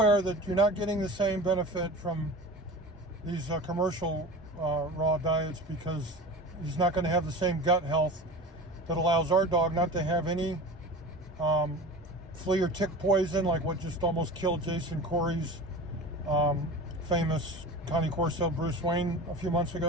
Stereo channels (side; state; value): both; normal; correlation 0.34